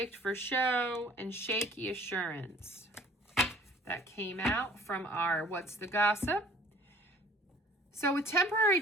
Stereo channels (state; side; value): normal; both; correlation 0.52